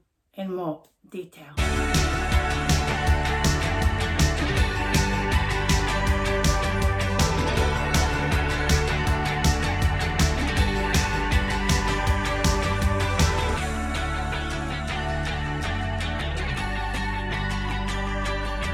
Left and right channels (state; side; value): identical; both; correlation 1.00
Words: in more detail.